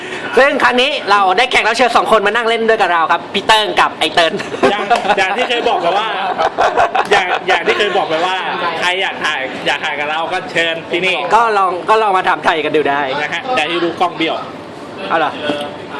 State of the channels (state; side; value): identical; both; correlation 1.00